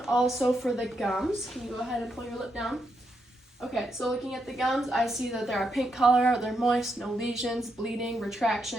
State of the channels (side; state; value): both; normal; correlation 0.81